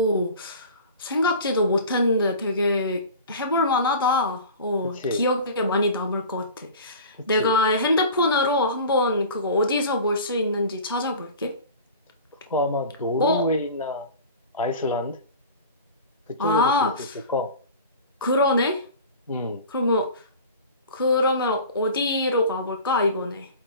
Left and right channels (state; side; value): inverted; both; correlation -0.38